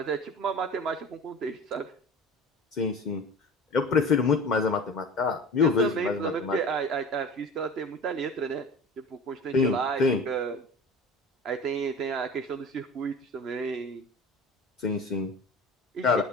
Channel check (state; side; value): normal; both; correlation 0.37